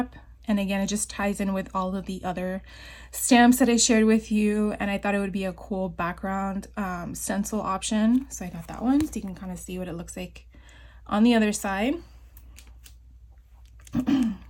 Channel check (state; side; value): identical; both; correlation 1.00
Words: And again, it just ties in with all of the other stamps that I shared with you. And I thought it would be a cool background stencil option. So I got that one. So you can kind of see what it looks like on the other side.